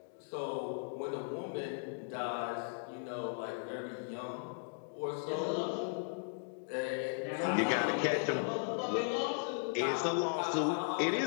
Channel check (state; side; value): silent; right; digital silence